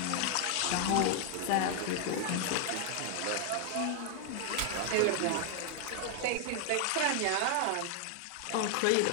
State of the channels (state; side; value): different; both; correlation 0.00